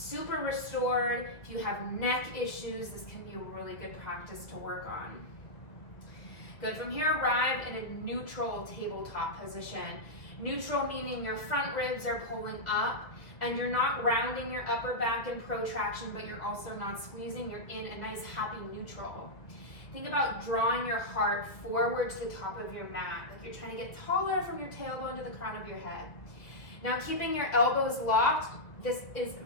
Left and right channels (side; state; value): right; late; 2.0 ms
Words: restored. If you have neck issues, this can be a really good practice to work on. Good. From here, arrive in a neutral tabletop position. Neutral meaning your front ribs are pulling up and you're not rounding your upper back in protraction, but you're also not squeezing. You're in a nice happy neutral. Think about drawing your heart forward to the top of your mat, like you're trying to get taller from your tailbone to the crown of your head. Now, keeping your elbows locked, this is